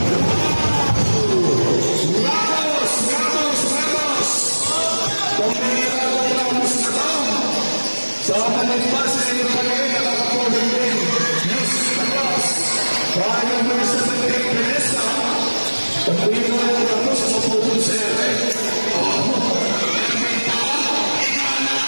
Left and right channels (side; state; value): both; inverted; correlation -1.00